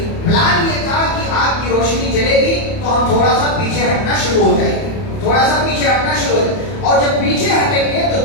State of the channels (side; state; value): right; late; 31 ms